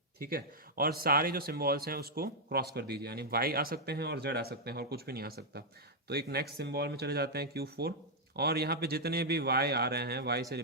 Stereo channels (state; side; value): normal; both; correlation -0.04